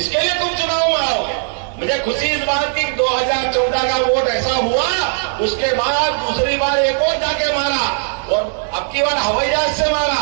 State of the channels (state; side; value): silent; left; digital silence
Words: इसके लिए तुम चुनाव में आओगे। मुझे खुशी इस बात की 2014 का वोट ऐसा हुआ, उसके बाद दूसरी बार एक और जाके मारा और अब की बार हवाई जहाज से मारा,